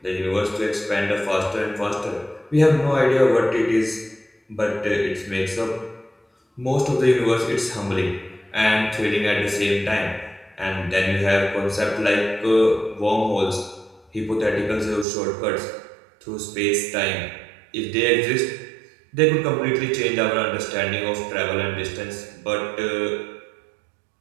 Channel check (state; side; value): drops out; left; at 15.1 s